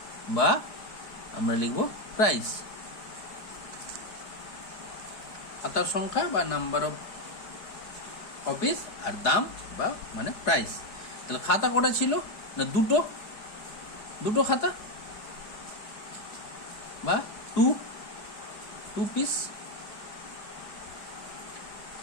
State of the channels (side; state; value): right; late; 4.8 ms